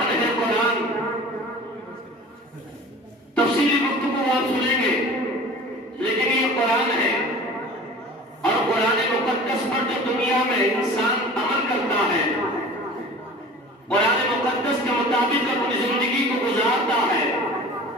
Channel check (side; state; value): both; normal; correlation 0.41